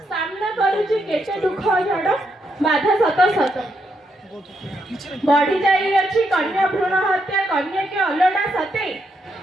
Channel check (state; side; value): normal; both; correlation 0.79